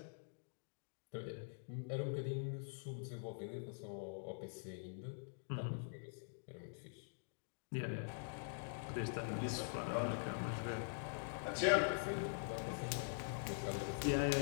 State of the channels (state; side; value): silent; right; digital silence